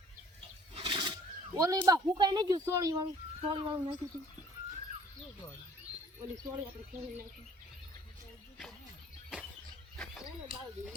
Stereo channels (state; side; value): normal; both; correlation 0.54